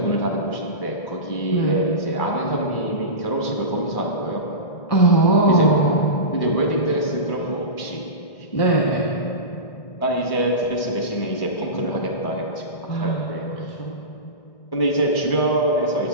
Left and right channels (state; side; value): late; right; 1.6 ms